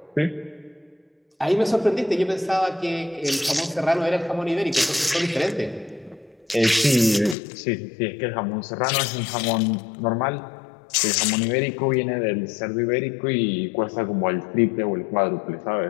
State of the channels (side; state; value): right; drops out; at 7.4 s